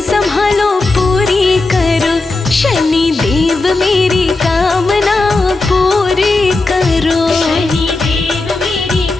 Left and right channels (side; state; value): right; quieter; 3.3 dB